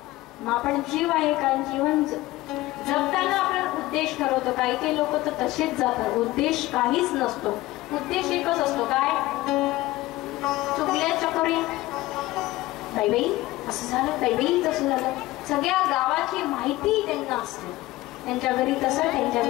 मग आपण जीव आहे का? जीवन जगताना आपण उद्देश ठरवतो. काही काही लोक तर तसेच जातात. उद्देश काहीच नसतो. उद्देश एकच असतो. काय? चुकल्या चकोरी बाई असं झालं, बाई तसं झालं. सगळ्या गावाची माहिती त्यांना असते. त्यांच्या घरी तसं, त्यांच्या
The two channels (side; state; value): right; quieter; 18.0 dB